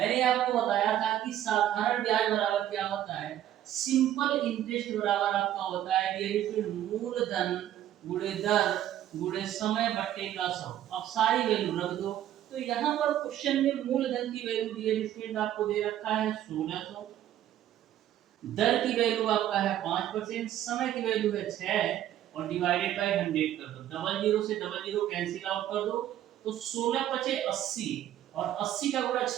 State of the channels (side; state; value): left; quieter; 11.9 dB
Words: आपको बताया था कि साधारण ब्याज बराबर क्या होता है, सिंपल इंटरेस्ट बराबर आपका होता है डियर स्टूडेंट मूलधन गुणे दर गुणे समय बट्टे का 100। अब सारी वैल्यू रख दो। तो यहाँ पर क्वेश्चन में मूलधन की वैल्यू डियर स्टूडेंट आपको दे रखा है 1600, दर की वैल्यू आपका है 5%, समय की वैल्यू है 6 और डिवाइडेड बाय 100 कर दो। डबल जीरो से डबल जीरो कैंसिल आउट कर दो तो 16 पचे 80 और 80 का गुणा